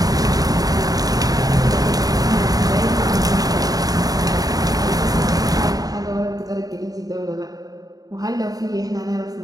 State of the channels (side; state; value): left; late; 0.18 ms